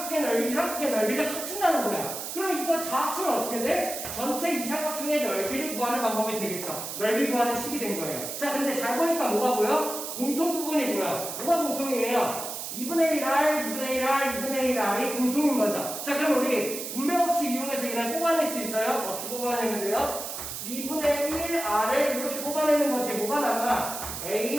넓이, 이 삼각형의 넓이를 합친다는 거야. 그러면 이걸 다 합치면 어떻게 돼? 전체 이 삼각형의 넓이를 구하는 방법이 되겠죠. 넓이 구하는 식이 된 거예요. 자, 근데 잘 보니까 뭐가 보여? 공통 부분이 보여. 뭐가 공통이에요? 2분의 1r, 2분의 1r, 2분의 1r이 공통인 거죠. 자, 그럼 우리 분배 법칙 이용해서 이걸 뽑아낼 수 있어요? 어떻게 뽑아내면 돼요? 2분의 1r을 이렇게 뽑아내는 거지. 뭐가 남아? a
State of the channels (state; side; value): noise; right; hiss, 7 dB below the sound